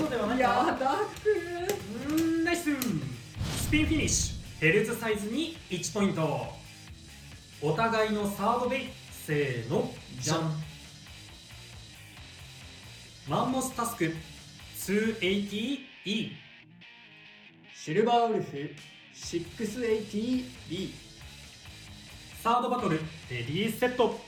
ではないか。いやー、ダークナイス。スピンフィニッシュ。ヘルズサイズに1ポイント。お互いのサードベイ、せーの、じゃん。マンモスタスク 280E。 シルバーウルフ 680B。 サードバトルレディーセット。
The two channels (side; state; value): both; identical; correlation 1.00